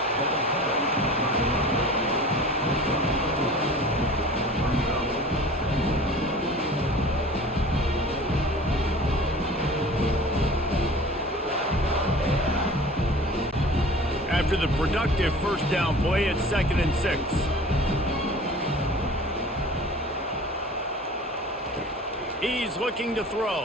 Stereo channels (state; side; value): normal; both; correlation 0.42